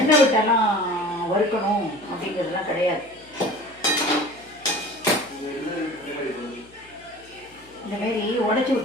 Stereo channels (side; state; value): left; noise; hum, 28 dB below the sound